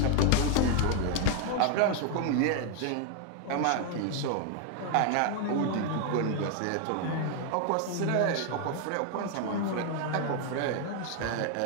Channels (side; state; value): both; different; correlation 0.00